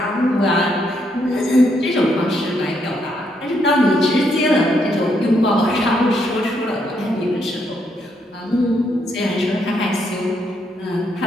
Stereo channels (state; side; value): normal; both; correlation 0.75